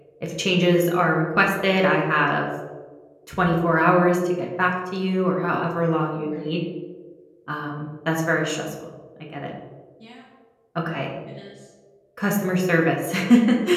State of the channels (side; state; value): both; identical; correlation 1.00